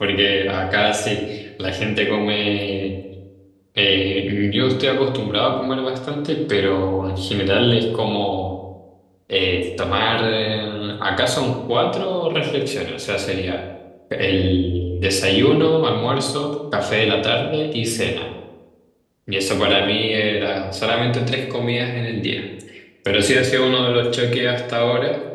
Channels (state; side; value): identical; both; correlation 1.00